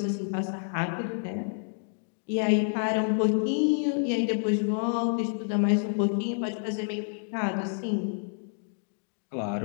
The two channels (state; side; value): silent; right; digital silence